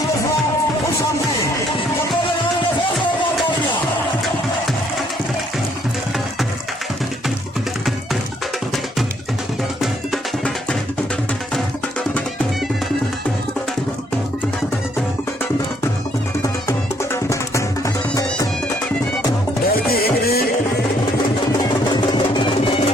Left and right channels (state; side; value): normal; both; correlation 0.68